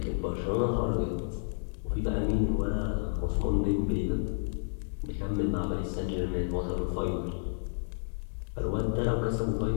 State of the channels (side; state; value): right; silent; digital silence